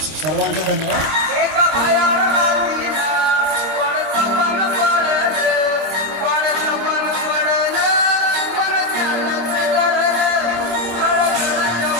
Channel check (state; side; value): late; left; 25 ms